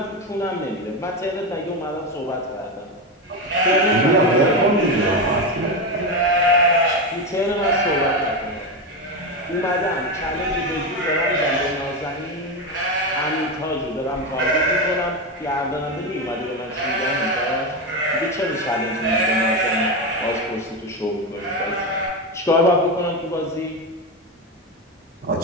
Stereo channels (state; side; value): normal; both; correlation 0.14